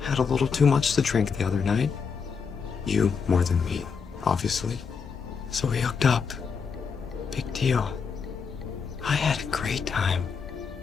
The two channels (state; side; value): quieter; right; 5.8 dB